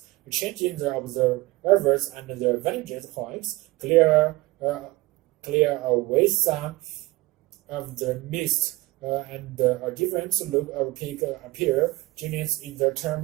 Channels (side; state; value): left; quieter; 20.6 dB